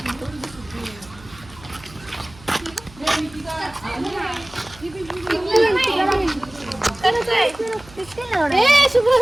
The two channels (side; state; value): right; noise; hum, 22 dB below the sound